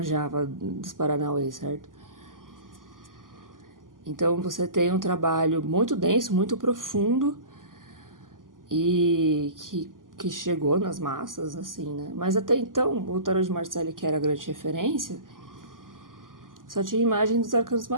dos Paranauê, certo? Então você tem um trabalho muito denso, muito profundo e que chegou nas massas, assim, né? Mas até então, o Tarot de Marselli, que era a grande referência, só tinha imagem dos arcanos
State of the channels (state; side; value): late; left; 0.90 ms